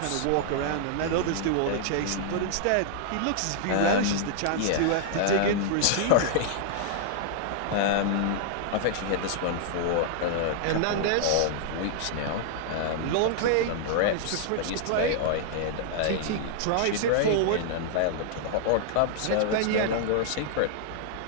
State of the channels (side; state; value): both; different; correlation -0.01